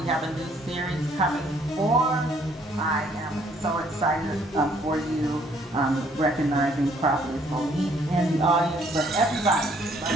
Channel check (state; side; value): normal; both; correlation 0.64